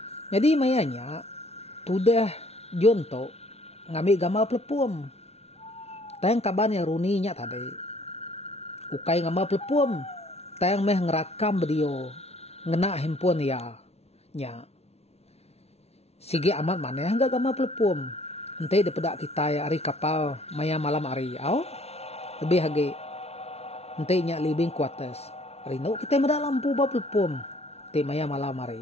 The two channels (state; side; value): late; right; 0.31 ms